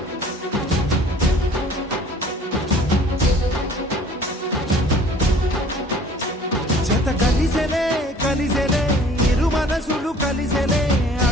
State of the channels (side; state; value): both; normal; correlation 0.51